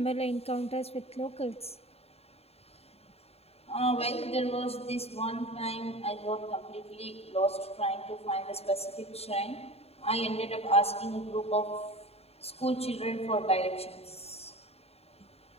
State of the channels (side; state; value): right; late; 0.29 ms